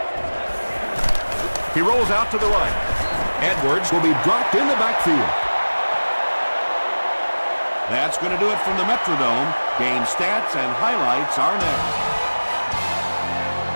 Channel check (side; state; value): both; inverted; correlation -1.00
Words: He rolls out to the right. Edwards will be dropped in the backfield. That's going to do it from the Metrodome. Game stats and highlights are next.